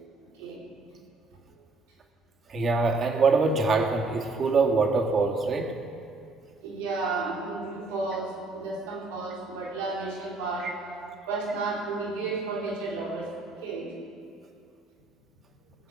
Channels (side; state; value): left; quieter; 3.5 dB